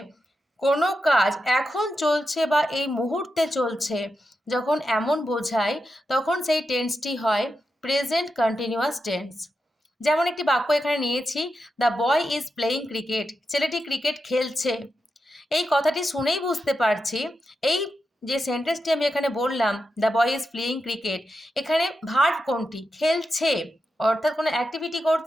কোনো কাজ এখন চলছে বা এই মুহূর্তে চলছে যখন এমন বোঝায় তখন সেই টেন্সটি হয় প্রেজেন্ট কন্টিনিউয়াস টেন্স। যেমন একটি বাক্য এখানে নিয়েছি, the boy is playing cricket, ছেলেটি ক্রিকেট খেলছে। এই কথাটি শুনেই বুঝতে পারছি এই যে সেন্টেন্সটি আমি এখানে বললাম, the boy is playing cricket, এখানে ভার্ব কোনটি? খেলছে, অর্থাৎ কোনো অ্যাক্টিভিটি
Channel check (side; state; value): both; normal; correlation 0.88